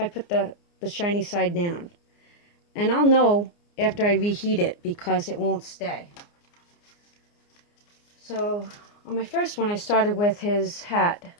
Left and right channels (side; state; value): right; late; 29 ms